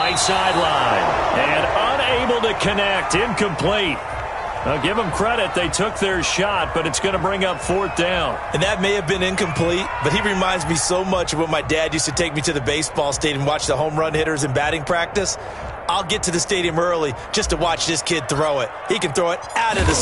sideline. And unable to connect, incomplete. Now, give them credit, they took their shot, but it's going to bring up 4th down. And that may have been incomplete, but he reminds me so much of when my dad used to take me to the baseball stadium and watch the home run hitters in batting practice. I'll get to the stadium early just to watch this kid throw it. He can throw it out of the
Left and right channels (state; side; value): identical; both; correlation 1.00